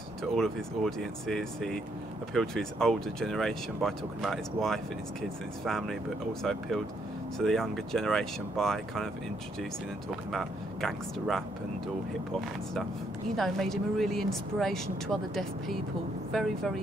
to all of his audiences. He appealed to his older generation by talking about his wife and his kids and his family, but also appealed to the younger generation by kind of introducing and talking about gangster rap and all hip hop and stuff. You know, made him a really inspiration to other deaf people. Very,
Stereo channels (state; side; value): normal; both; correlation 0.73